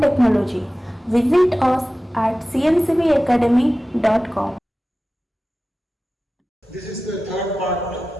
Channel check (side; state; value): both; normal; correlation 0.95